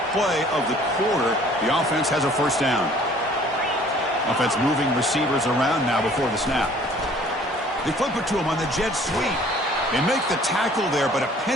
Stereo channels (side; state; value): both; normal; correlation 0.54